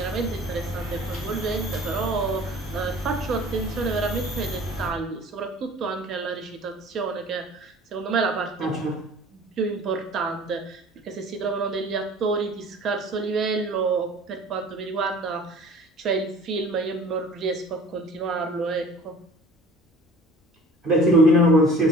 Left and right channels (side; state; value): both; normal; correlation 0.46